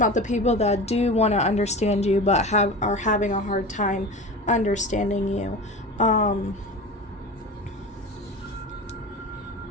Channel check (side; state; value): both; normal; correlation 0.31